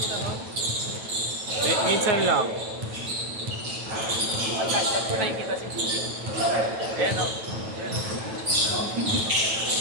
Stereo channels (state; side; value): late; left; 9.1 ms